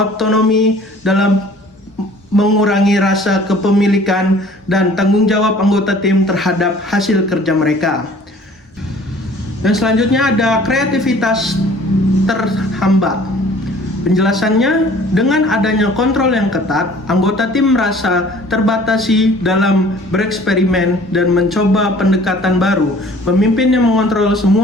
dalam mengurangi rasa kepemilikan dan tanggung jawab anggota tim terhadap hasil kerja mereka. Dan selanjutnya ada kreativitas terhambat. Penjelasannya, dengan adanya kontrol yang ketat, anggota tim merasa terbatasi dalam bereksperimen dan mencoba pendekatan baru. Pemimpin yang mengontrol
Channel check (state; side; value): normal; both; correlation 0.51